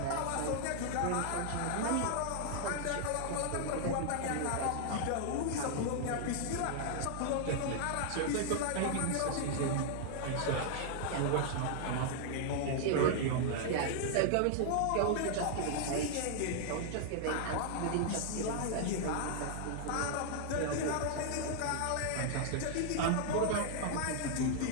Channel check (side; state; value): both; different; correlation -0.01